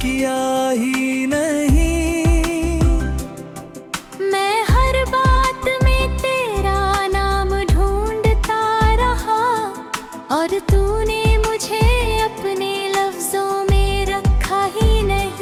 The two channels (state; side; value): identical; both; correlation 1.00